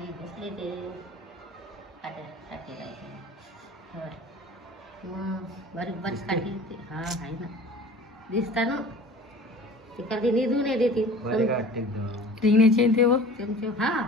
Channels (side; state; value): both; normal; correlation 0.42